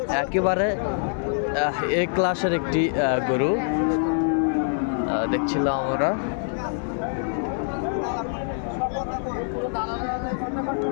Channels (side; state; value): right; silent; 62 dB below the other